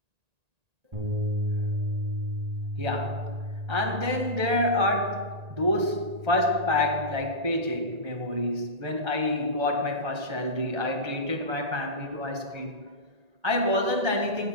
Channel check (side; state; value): left; late; 1.8 ms